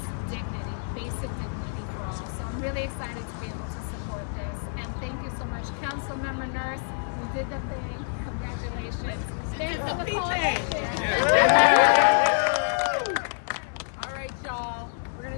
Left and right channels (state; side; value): silent; right; digital silence